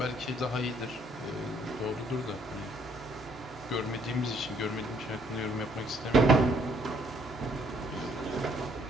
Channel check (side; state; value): both; normal; correlation 0.66